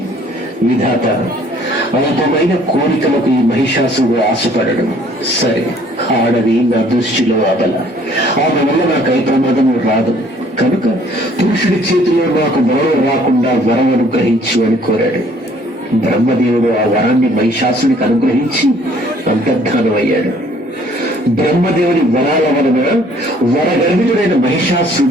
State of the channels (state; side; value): normal; both; correlation 0.58